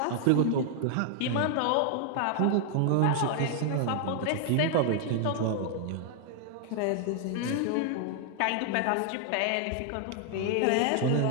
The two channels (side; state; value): both; different; correlation 0.00